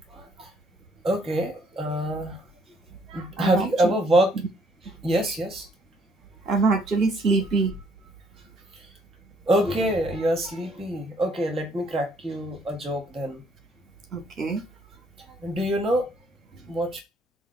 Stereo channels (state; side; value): normal; both; correlation 0.66